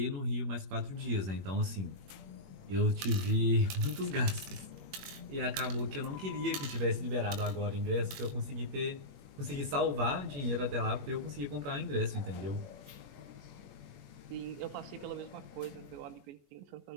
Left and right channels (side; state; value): left; late; 21 ms